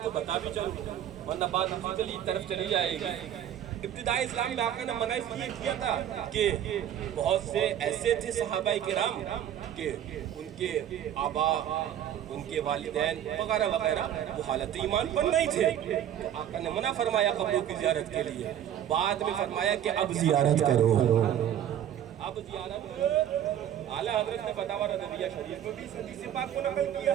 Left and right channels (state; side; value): quieter; left; 10.6 dB